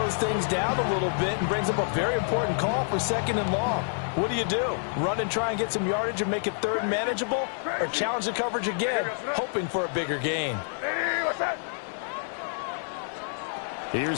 things down a little bit and brings up a very important call for 2nd and long. What do? Run and try and get some yardage and make it 3rd and manageable? Or challenge the coverage again, hoping for a bigger gain?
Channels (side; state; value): right; silent; 60 dB below the other